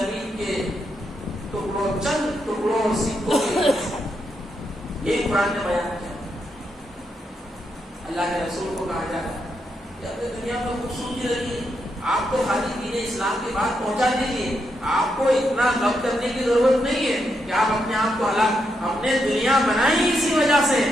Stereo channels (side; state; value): both; normal; correlation 0.81